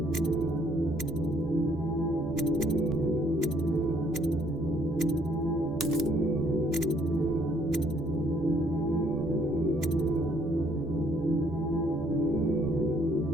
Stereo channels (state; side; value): normal; both; correlation 0.65